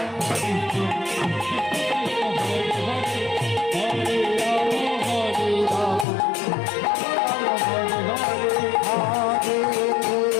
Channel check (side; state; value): right; drops out; at 6.1 s